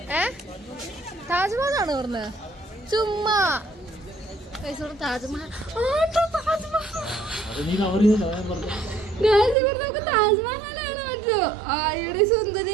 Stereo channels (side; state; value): left; drops out; at 9.6 s